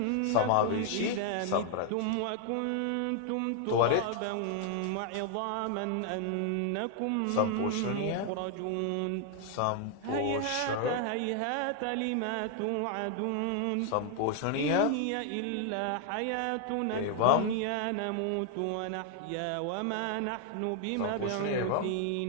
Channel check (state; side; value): different; both; correlation 0.00